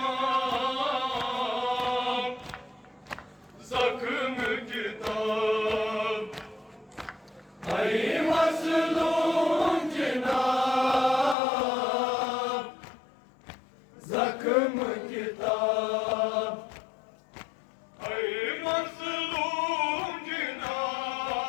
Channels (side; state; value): right; drops out; at 11.4 s